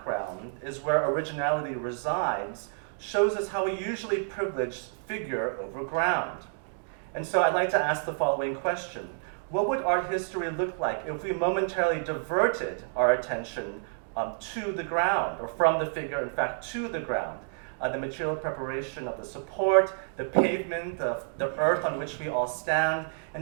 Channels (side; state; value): left; silent; digital silence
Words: is where originality resides shows us how we usually privilege figure over ground. And so I'd like to ask the following question. What would art history look like if we momentarily diverted our attention to the ground, or from the figure, in fact, to the ground? The material preparation of the support, the pavement, the earth on which we all stand, and